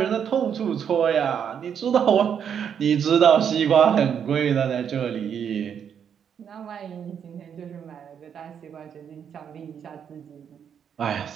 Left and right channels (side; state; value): left; quieter; 8.0 dB